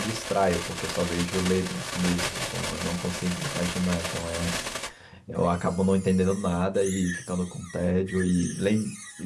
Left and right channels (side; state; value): both; identical; correlation 1.00